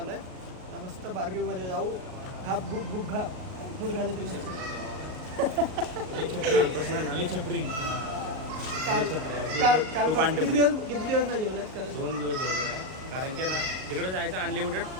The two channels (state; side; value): late; left; 38 ms